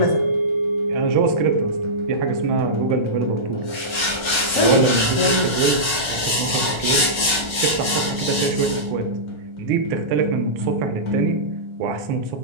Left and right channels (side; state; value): left; late; 1.3 ms